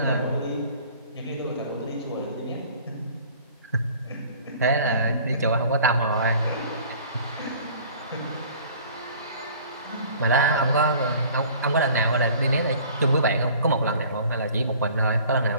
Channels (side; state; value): both; inverted; correlation -0.49